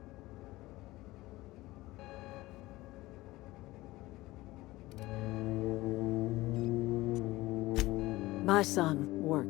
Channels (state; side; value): quieter; right; 18.8 dB